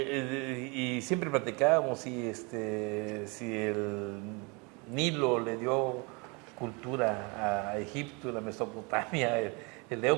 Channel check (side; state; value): left; quieter; 29.9 dB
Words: siempre platicábamos si el Nilo le dio cultura a Egipto, la Mesopotamia, el